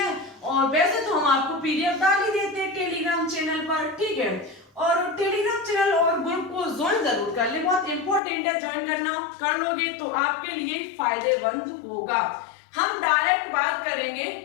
और वैसे तो हम आपको पीडीएफ डाल ही देते हैं टेलीग्राम चैनल पर। ठीक है, और टेलीग्राम चैनल और ग्रुप को ज्वाइन जरूर कर ले, बहुत इंपॉर्टेंट है, ज्वाइन करना। कर लोगे तो आपके लिए फायदेमंद होगा। हम डायरेक्ट बात करेंगे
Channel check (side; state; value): right; drops out; at 8.2 s